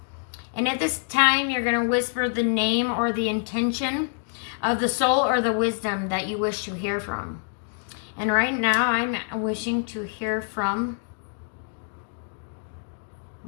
And at this time, you're going to whisper the name or the intention of the soul or the wisdom that you wish to hear from. And right now, I'm wishing to hear from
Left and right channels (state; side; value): silent; right; 58 dB below the other